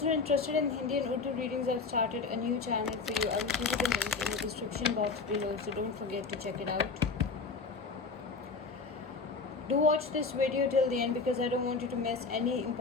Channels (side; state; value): right; quieter; 4.4 dB